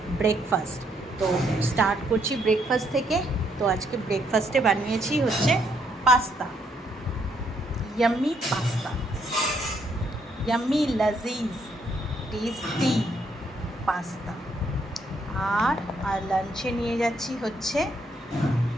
ব্রেকফাস্ট। তো স্টার্ট করছি ব্রেকফাস্ট থেকে। তো আজকে ব্রেকফাস্টে বানিয়েছি হচ্ছে পাস্তা, ইয়াম্মি পাস্তা, ইয়াম্মি লাজিজ টেস্টি পাস্তা। আর লাঞ্চে নিয়ে যাচ্ছি হচ্ছে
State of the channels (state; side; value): normal; both; correlation 0.72